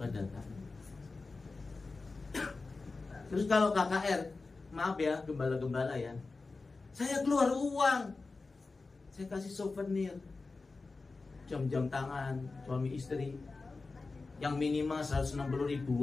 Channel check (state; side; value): quieter; right; 3.8 dB